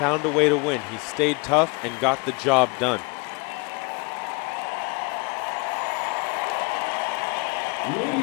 a way to win. He stayed tough and got the job done.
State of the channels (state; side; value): quieter; right; 29.3 dB